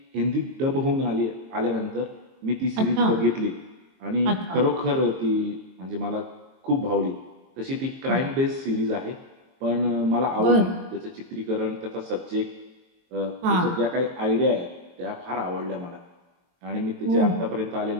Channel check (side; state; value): left; late; 22 ms